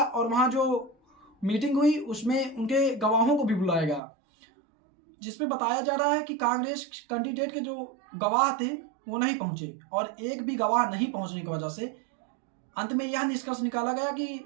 और वहाँ जो मीटिंग हुई उसमें उनके गवाहों को भी बुलाया गया, जिसमें बताया जा रहा है कि कांग्रेस कैंडिडेट के जो गवाह थे वो नहीं पहुंचे, और एक भी गवाह नहीं पहुंचने की वजह से अंत में यह निष्कर्ष निकाला गया कि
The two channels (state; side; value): drops out; left; at 4.0 s